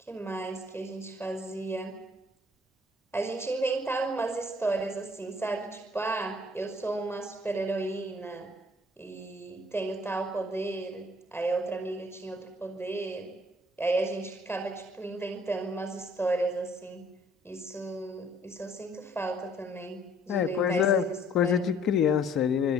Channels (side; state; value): both; normal; correlation 0.60